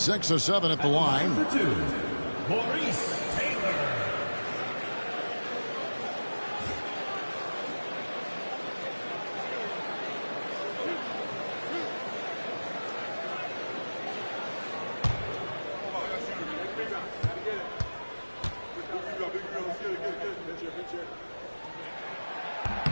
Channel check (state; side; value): inverted; both; correlation -1.00